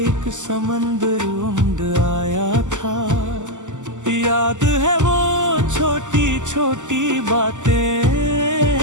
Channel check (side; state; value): left; late; 0.86 ms